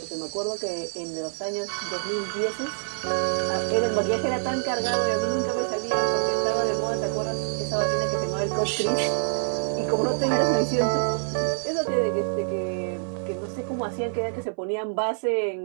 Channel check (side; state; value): left; silent; 59 dB below the other